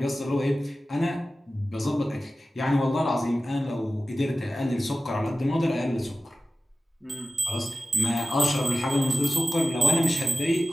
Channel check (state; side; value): normal; both; correlation 0.94